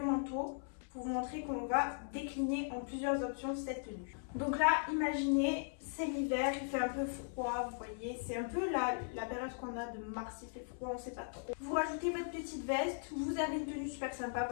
manteau. pour vous montrer qu'on va décliner en plusieurs options cette tenue. Donc là, imaginez, c'est l'hiver, il fait un peu froid, vous voyez, c'est un peu la période qu'on a de mars, il fait froid, on sait pas trop. Vous rajoutez votre petite veste, vous avez une tenue super sympa,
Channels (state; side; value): silent; right; 52 dB below the other